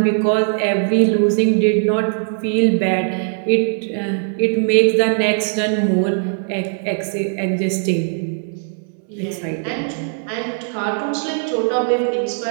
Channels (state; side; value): silent; left; 66 dB below the other